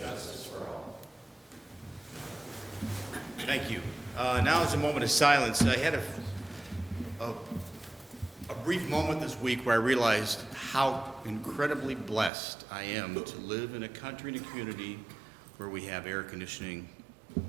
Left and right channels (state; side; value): drops out; left; at 12.3 s